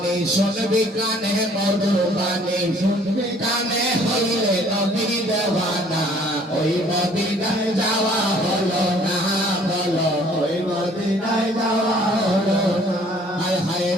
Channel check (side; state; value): both; normal; correlation 0.57